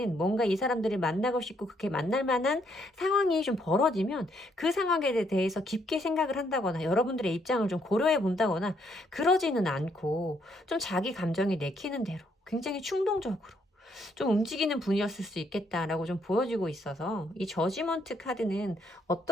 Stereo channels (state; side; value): normal; both; correlation 0.71